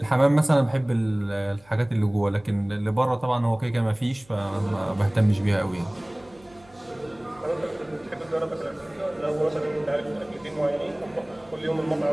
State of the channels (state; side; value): noise; right; hum, 28 dB below the sound